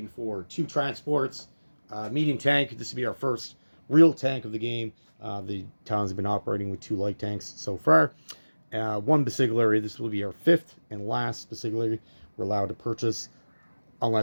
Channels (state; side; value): inverted; both; correlation -1.00